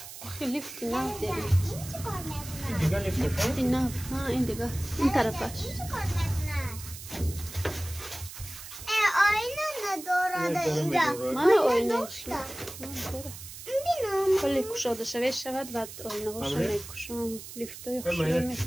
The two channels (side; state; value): right; noise; hiss, 13 dB below the sound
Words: ليفت ناف داري دیگه لیفت ناف ها این دیگه این طرفش آینه نداره اینجا من آینهش کلی کشاده شود و آینه هاشو میکشم لیفت های خوشی